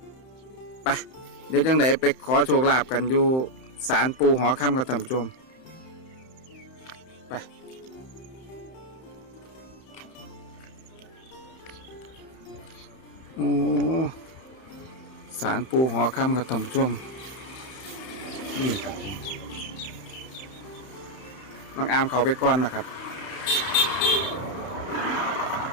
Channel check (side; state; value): right; late; 31 ms